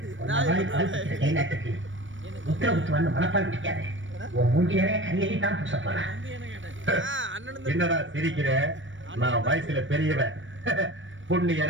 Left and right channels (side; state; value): left; late; 0.56 ms